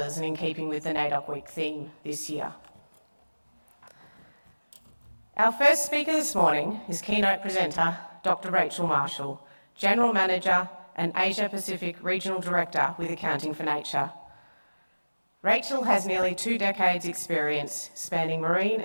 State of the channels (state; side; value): inverted; both; correlation -1.00